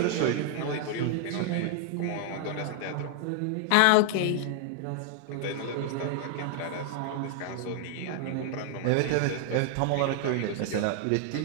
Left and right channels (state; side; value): different; both; correlation 0.00